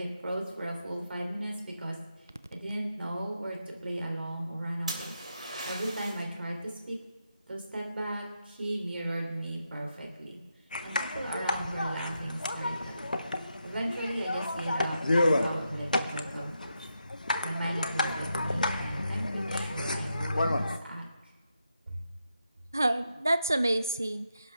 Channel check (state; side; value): inverted; both; correlation -0.84